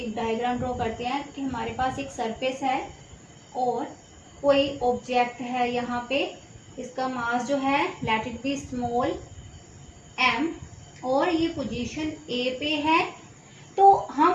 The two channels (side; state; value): both; identical; correlation 1.00